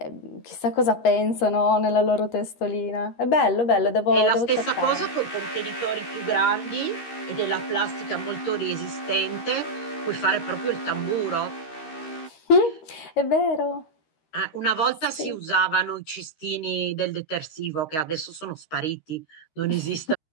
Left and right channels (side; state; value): right; late; 13 ms